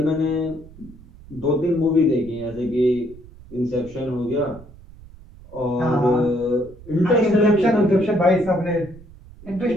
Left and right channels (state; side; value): noise; right; rumble, 20 dB below the sound